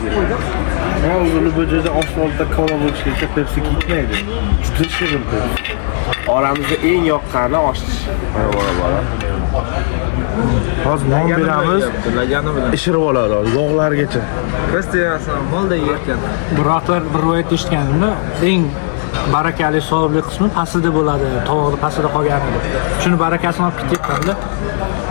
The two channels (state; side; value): silent; right; digital silence